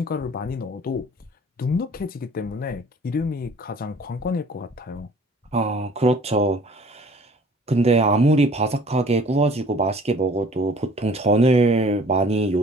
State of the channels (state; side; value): normal; both; correlation 0.51